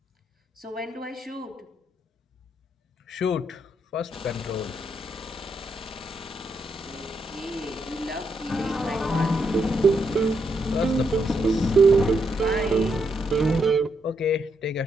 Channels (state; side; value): normal; both; correlation 0.79